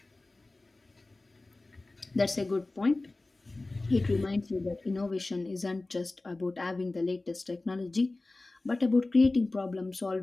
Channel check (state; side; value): quieter; right; 3.1 dB